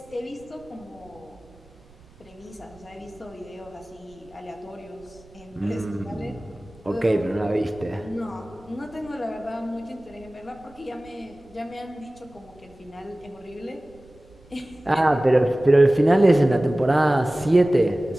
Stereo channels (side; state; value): right; noise; rumble, 27 dB below the sound